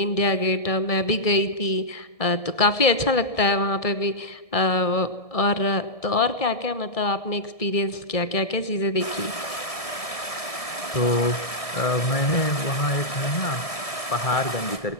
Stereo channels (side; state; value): right; late; 1.7 ms